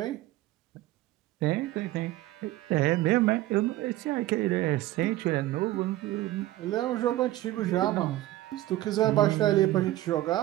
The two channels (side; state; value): left; quieter; 15.9 dB